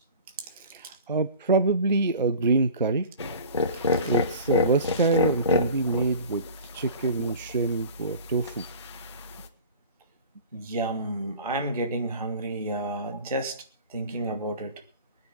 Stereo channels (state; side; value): inverted; both; correlation -0.39